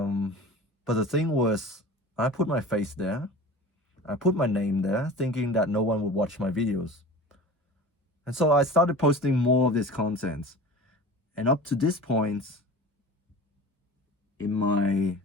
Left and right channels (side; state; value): both; normal; correlation 0.37